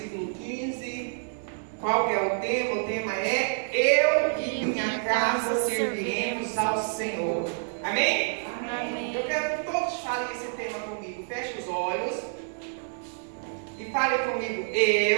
15. Qual que é o tema? O tema é: eu e minha casa serviremos ao Senhor. Amém? Amém. Eu quero que todos falem esse tema comigo. Feche os olhos e falem comigo:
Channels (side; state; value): left; silent; digital silence